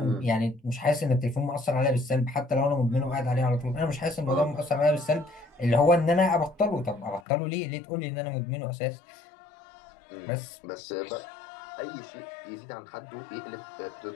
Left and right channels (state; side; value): drops out; right; at 7.2 s